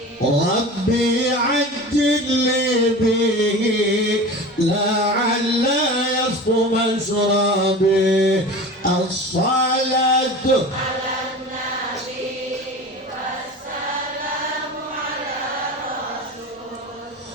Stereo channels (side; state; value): both; normal; correlation 0.34